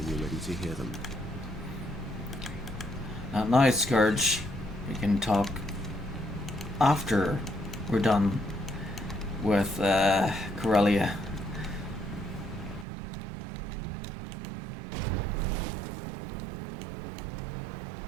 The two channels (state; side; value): drops out; left; at 12.9 s